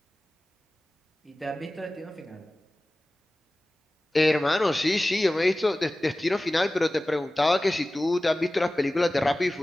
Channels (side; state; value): both; normal; correlation 0.97